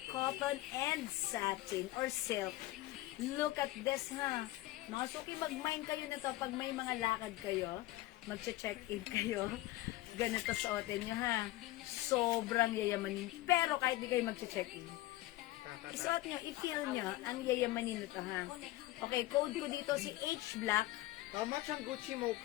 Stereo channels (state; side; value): quieter; right; 17.4 dB